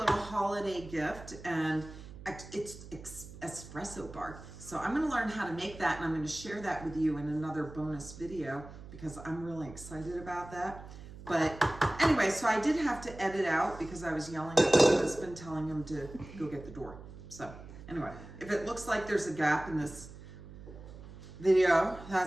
holiday gift, and it's espresso bar. So I'm gonna learn how to make that, and I'm gonna share that with you in another bonus video because I'm really excited about that. But anyway, so I did have to edit out because I was yelling at my husband, telling him to go get the door. So anyway, if it looks like there's a gap in this video,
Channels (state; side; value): noise; right; hum, 15 dB below the sound